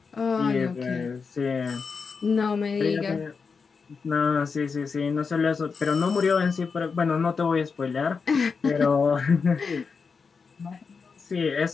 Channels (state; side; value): quieter; right; 5.2 dB